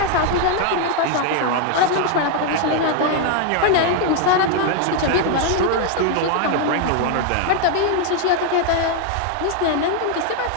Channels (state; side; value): different; both; correlation 0.00